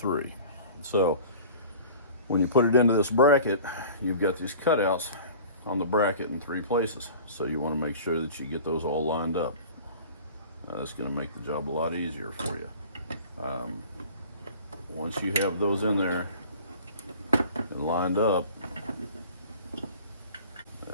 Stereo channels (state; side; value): inverted; both; correlation -0.43